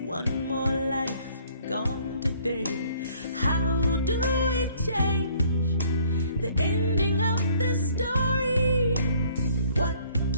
One more life gone today. How do we change the ending of this story?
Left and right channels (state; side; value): inverted; both; correlation -0.60